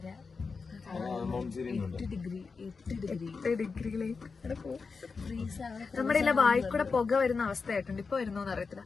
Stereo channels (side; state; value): right; quieter; 4.8 dB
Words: നമ്മുടെ ഇല്ല വായിക്കൂടെ പുക വരുന്ന അവസ്ഥയായിട്ടുണ്ട്. ഇപ്പൊ വരുന്നോന്ന് അറിയത്തില്ല.